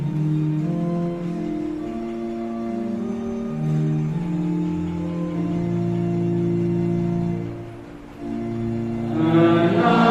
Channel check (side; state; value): both; identical; correlation 1.00